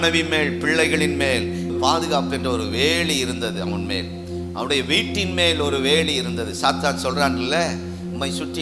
மேல், பிள்ளைகளின் மேல் பாதுகாப்பு என்ற ஒரு வேலி இருந்தது. அவன் மேல், அவருடைய வீட்டின் மேல் ஒரு வேலி இருந்தது. சாத்தான் சொல்றான்ல, உம்மை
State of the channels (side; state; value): both; identical; correlation 1.00